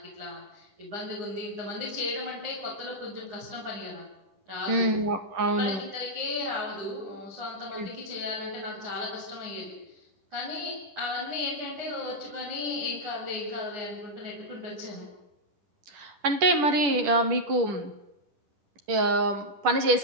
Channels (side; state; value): left; late; 10 ms